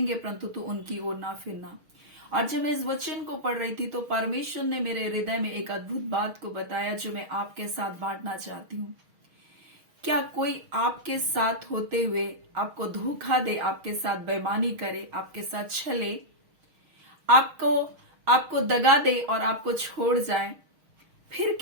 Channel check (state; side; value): late; left; 6.4 ms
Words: परंतु तू उनकी ओर ना फिरना। और जब मैं इस वचन को पढ़ रही थी तो परमेश्वर ने मेरे हृदय में एक अद्भुत बात को बताया, जो मैं आपके साथ बांटना चाहती हूँ। क्या कोई आपके साथ होते हुए आपको धोखा दे, आपके साथ बेईमानी करे, आपके साथ छले, आपको दगा दे और आपको छोड़ जाए, फिर